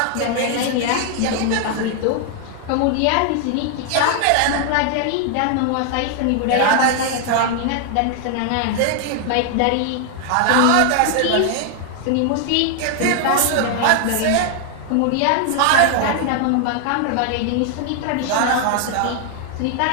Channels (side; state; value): both; different; correlation 0.00